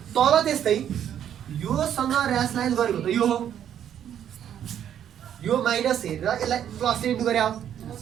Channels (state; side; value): quieter; left; 9.8 dB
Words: तल त्यस्तै योसँग र्यासलाइज गरेको त यो हो यो माइनस हेरेर यसलाई प्लस इन्टु गरे हो